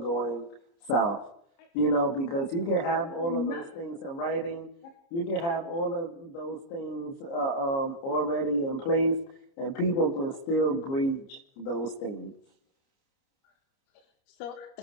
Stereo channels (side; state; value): right; late; 29 ms